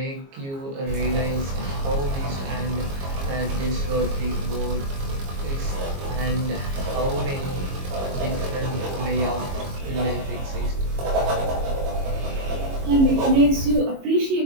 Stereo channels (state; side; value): late; left; 22 ms